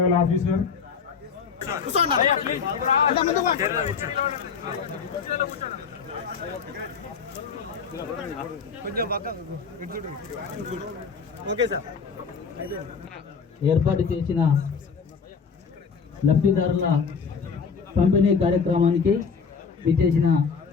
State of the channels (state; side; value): quieter; right; 5.8 dB